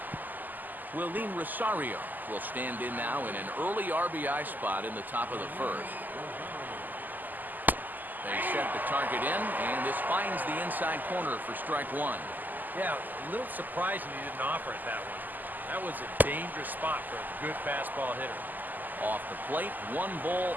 Willeen Rosario will stand in now in an early RBI spot in the top of the first. They set the target in, and this finds the inside corner for strike one. Yeah, a little surprising he didn't offer it that one. That was a dangerous spot for a good fastball hitter. Off the plate, 1 ball,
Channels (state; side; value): late; left; 0.085 ms